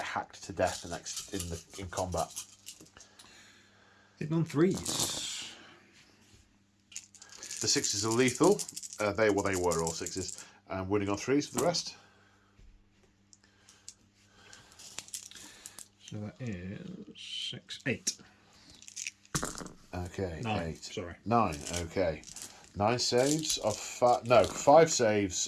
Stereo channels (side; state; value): both; identical; correlation 1.00